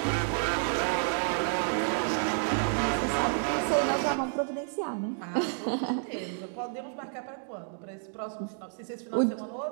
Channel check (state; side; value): silent; left; 58 dB below the other